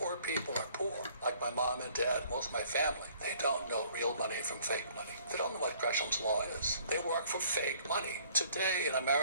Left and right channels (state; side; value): inverted; both; correlation -0.58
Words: people are poor, like my mom and dad, most of my family, they don't know real money from fake money. They don't know what Gresham's law is. They work for fake money. Today in